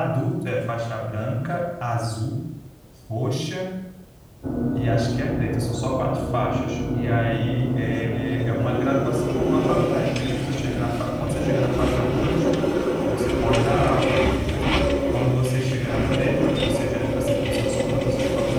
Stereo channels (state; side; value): identical; both; correlation 1.00